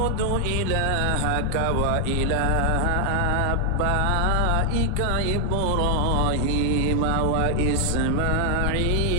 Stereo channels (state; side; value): different; both; correlation 0.00